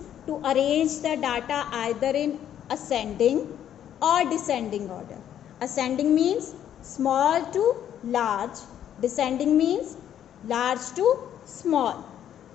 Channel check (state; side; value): quieter; right; 10.3 dB